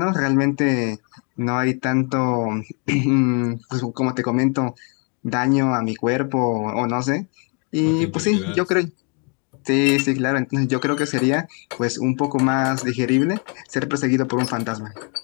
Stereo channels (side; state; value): right; quieter; 36.4 dB